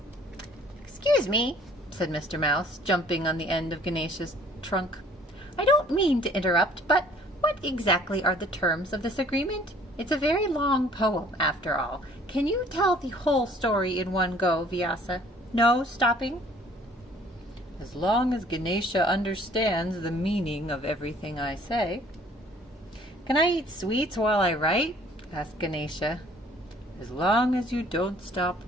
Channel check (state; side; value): normal; both; correlation 0.56